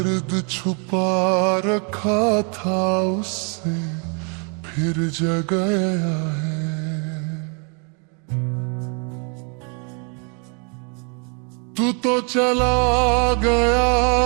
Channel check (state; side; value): quieter; left; 37.7 dB